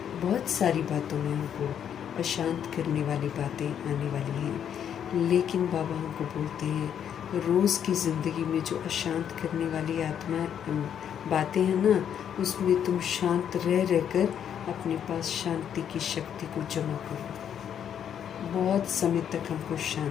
बहुत सारी बातों में हमको अशांत करने वाली बातें आने वाली हैं। लेकिन बाबा हमको बोलते हैं रोज़ की ज़िंदगी में जो अशांत करने वाली आत्मा बातें हैं ना, उसमें तुम शांत रहकर अपने पास शांति की शक्ति को जमा करो। बहुत समय तक हमको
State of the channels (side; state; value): right; quieter; 8.9 dB